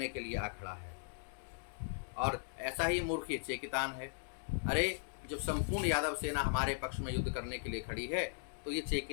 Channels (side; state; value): right; silent; digital silence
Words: के लिए आ खड़ा है। और ऐसा ही मूर्ख ये चेकितान है। अरे जब संपूर्ण यादव सेना हमारे पक्ष में युद्ध करने के लिए खड़ी है, तो ये